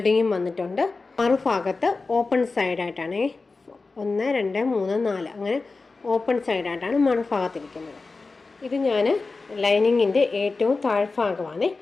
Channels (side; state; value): right; quieter; 3.9 dB